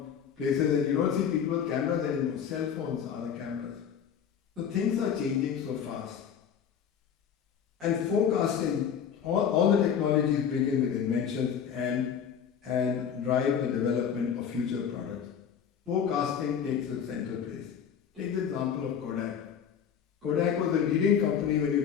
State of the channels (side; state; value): right; quieter; 7.9 dB